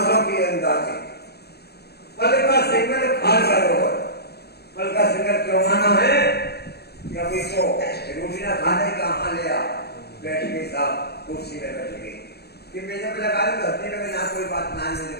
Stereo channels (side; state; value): right; late; 0.47 ms